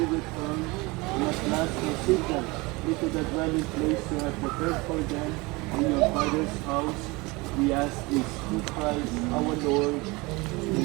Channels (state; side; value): quieter; left; 24.5 dB